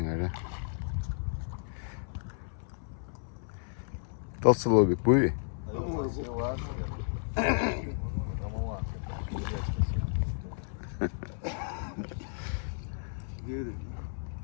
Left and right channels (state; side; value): silent; right; 56 dB below the other